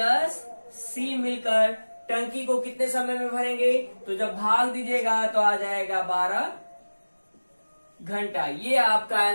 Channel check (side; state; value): both; inverted; correlation -1.00